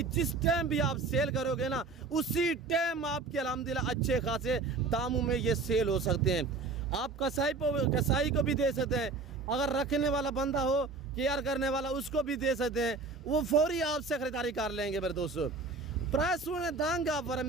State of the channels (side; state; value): left; quieter; 3.9 dB